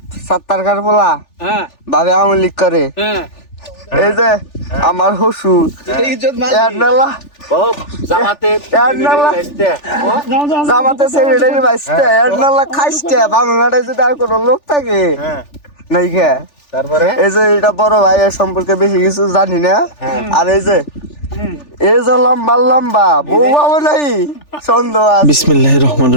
সাত্তারকার পোলা ভাবে আওয়ামী লীগ করে, এই যে আমার শ্বশুর জামাতে সেক্রেটারি বাইসতে খাইছে বাংলাটা যদি আর কোনো লোক থাকে নাই খে। তারপরে এই যে এটা বড় ভাই এর সম্পর্কে বেশি কিছু জানি না। আর এই যে লম্বা লম্বা বউ পাবো নাই সন্দেহ আছে। বিসমিল্লাহির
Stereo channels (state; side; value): late; right; 3.4 ms